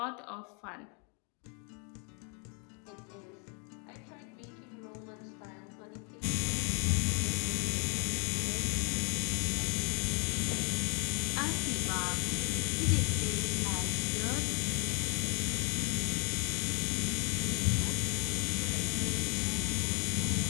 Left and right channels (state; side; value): quieter; right; 37.8 dB